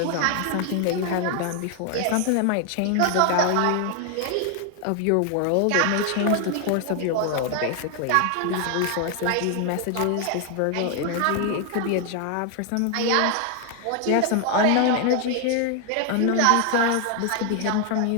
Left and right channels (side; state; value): both; different; correlation 0.00